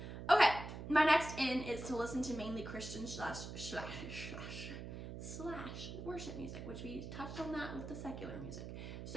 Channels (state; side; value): noise; right; hum, 8 dB below the sound